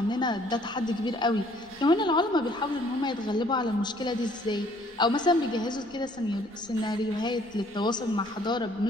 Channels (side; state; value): left; noise; rumble, 28 dB below the sound